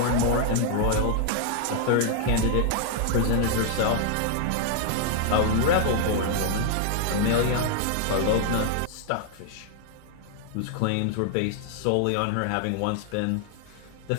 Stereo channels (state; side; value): different; both; correlation 0.00